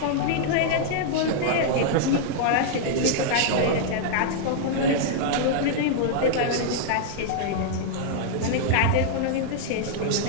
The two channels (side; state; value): both; different; correlation -0.01